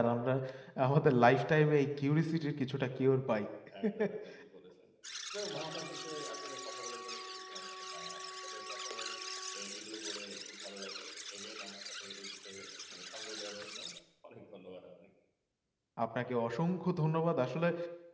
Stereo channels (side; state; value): both; identical; correlation 1.00